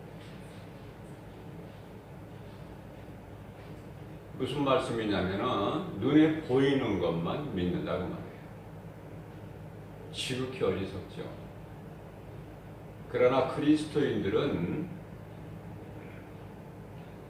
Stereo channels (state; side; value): identical; both; correlation 1.00